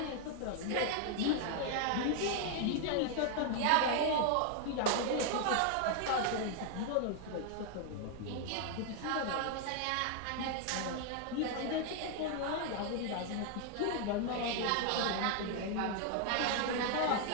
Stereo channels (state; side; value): different; both; correlation 0.00